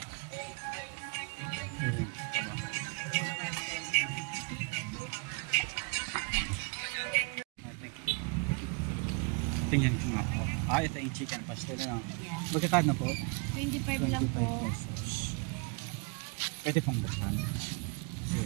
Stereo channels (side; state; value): left; quieter; 33.5 dB